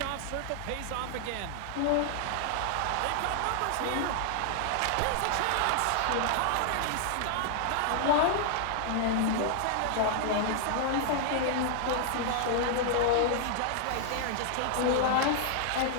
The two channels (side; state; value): both; different; correlation 0.00